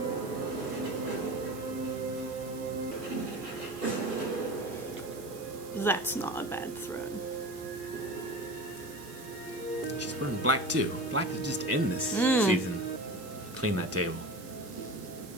That's not a bad throne. She's wearing black too. Black is just in this season. Clean that table.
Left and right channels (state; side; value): noise; right; hiss, 17 dB below the sound